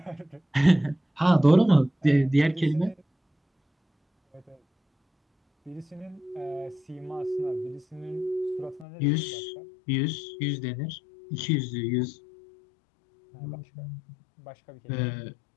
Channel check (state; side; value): drops out; right; at 8.8 s